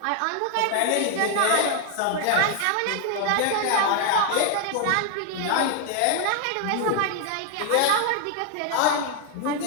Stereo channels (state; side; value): different; both; correlation 0.00